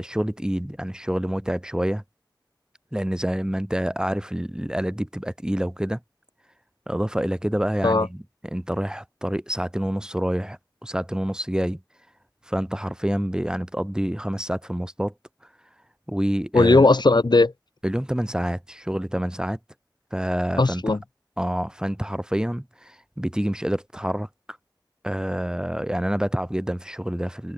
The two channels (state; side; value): normal; both; correlation 0.89